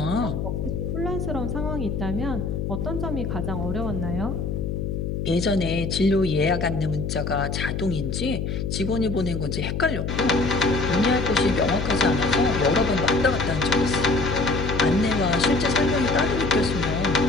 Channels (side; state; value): left; noise; hum, 2 dB below the sound